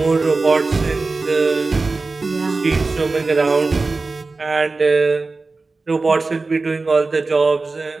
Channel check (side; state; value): left; quieter; 3.7 dB